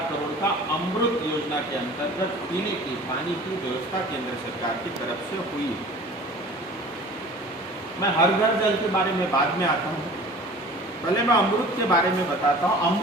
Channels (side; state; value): both; normal; correlation 0.43